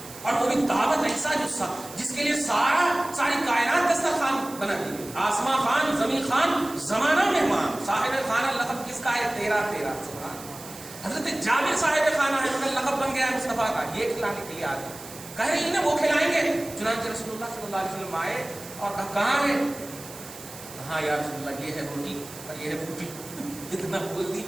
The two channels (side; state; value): right; noise; hiss, 15 dB below the sound